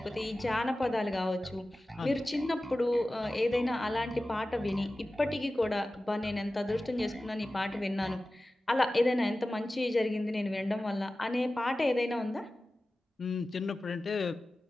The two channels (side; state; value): both; normal; correlation 0.96